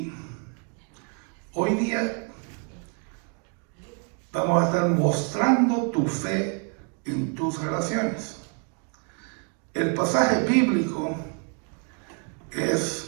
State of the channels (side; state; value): left; quieter; 39.7 dB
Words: hoy día vamos a estar mostrando tu fe en tus relaciones. El pasaje bíblico